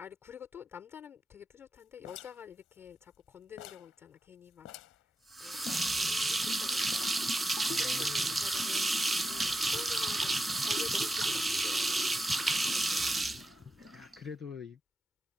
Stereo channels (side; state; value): both; normal; correlation 0.89